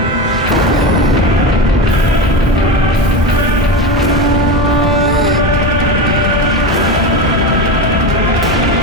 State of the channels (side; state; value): both; normal; correlation 0.21